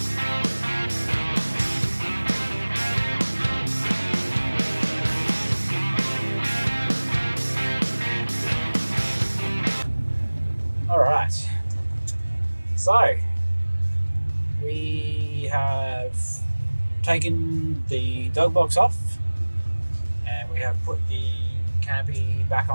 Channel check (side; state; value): both; inverted; correlation -1.00